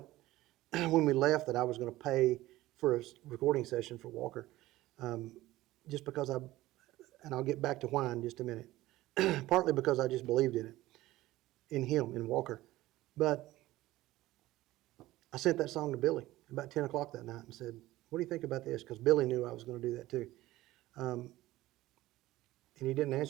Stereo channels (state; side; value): quieter; left; 16.9 dB